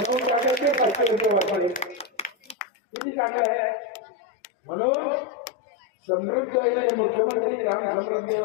टाकायचे 500 रुपये वापरले. किती चांगलं आहे. म्हणून समृद्ध मुख्यमंत्री ग्राम समृद्धी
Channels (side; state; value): right; drops out; at 2.6 s